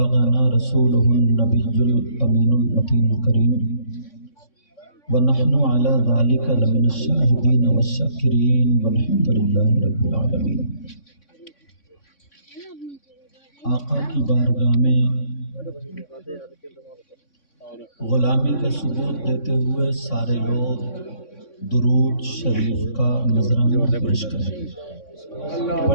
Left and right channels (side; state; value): right; late; 3.6 ms